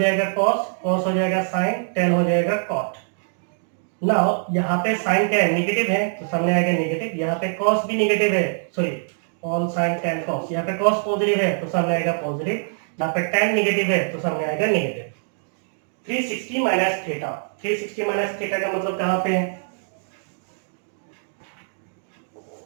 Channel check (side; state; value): left; silent; digital silence